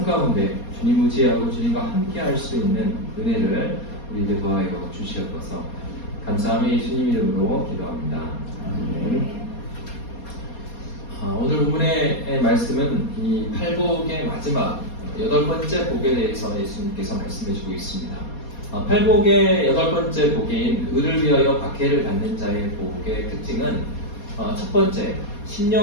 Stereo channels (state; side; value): late; right; 4.2 ms